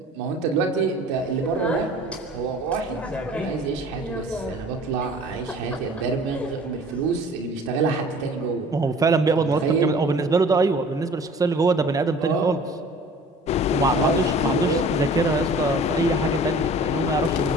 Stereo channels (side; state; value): both; normal; correlation 0.47